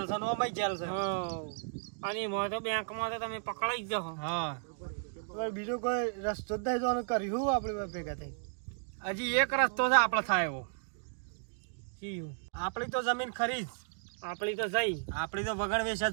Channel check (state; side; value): silent; left; digital silence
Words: છે ને ઓમાંય જેલ છે. અને એમાં તો બેંકમાં તો તમે પકડાઈ જ જાઓ. હા હવે બીજો કોઈ રસ્તો જ નહીં તો કર્યું આપણે બે ભેગા થઈ. હજી એક રસ્તો છે આપણે થાય એવો. શીયું? આપણી તો જમીન ખરી જ. આપણી તો જઈ. આપણી તો વગણ વેચ